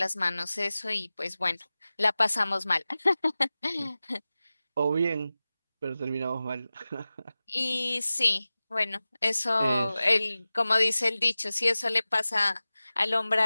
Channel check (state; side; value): inverted; both; correlation -0.97